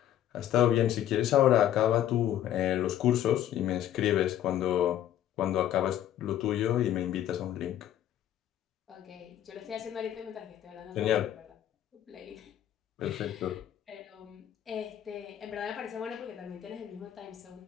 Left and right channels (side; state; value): right; quieter; 11.4 dB